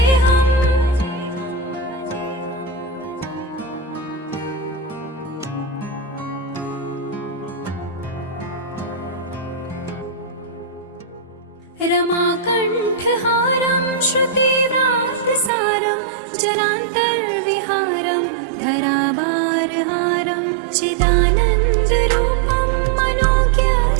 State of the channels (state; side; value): drops out; left; at 15.5 s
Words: रमाकण्ठहारं श्रुतिव्रातसारं जरान्तर्विहारं धरावारहारं चिदानन्दरूपं